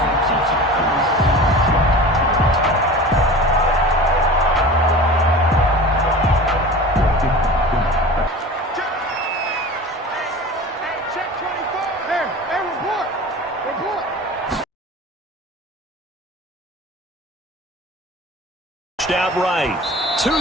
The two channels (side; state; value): both; normal; correlation 0.36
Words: Out right to